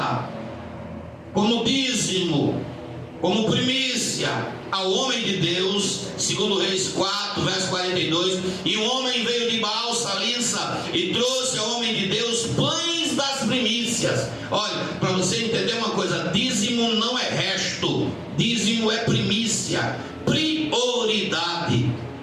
como dízimo, como primícia, ao homem de Deus, segundo Reis 4, verso 42, e o homem veio de Baal Salissa e trouxe ao homem de Deus pães das primícias. Olha, para você entender uma coisa, dízimo não é resto, dízimo é primícia, prioridade.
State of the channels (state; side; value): identical; both; correlation 1.00